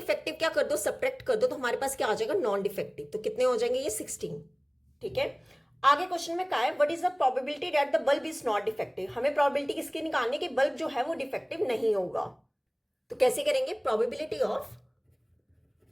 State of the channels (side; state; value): both; identical; correlation 1.00